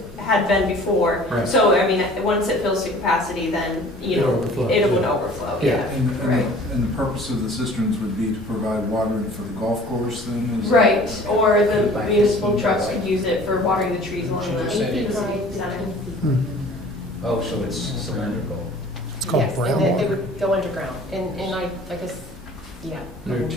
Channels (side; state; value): both; normal; correlation 0.48